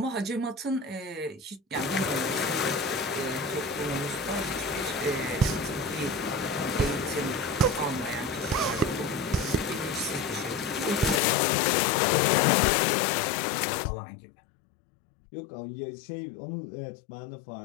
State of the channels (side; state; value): right; drops out; at 11.2 s